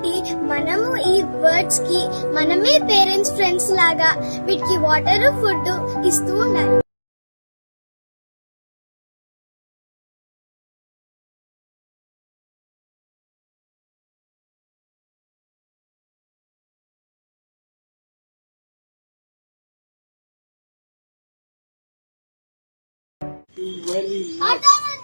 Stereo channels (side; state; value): both; inverted; correlation -1.00